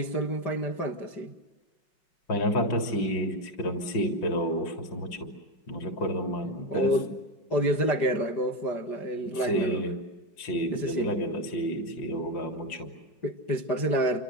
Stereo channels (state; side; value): late; right; 5.7 ms